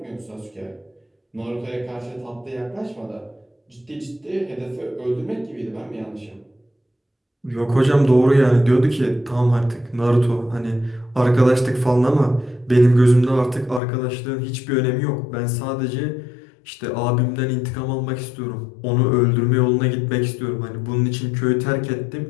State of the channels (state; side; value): drops out; right; at 13.8 s